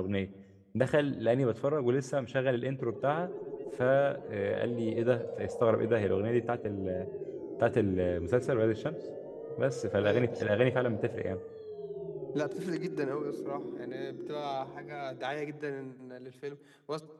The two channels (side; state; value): both; identical; correlation 1.00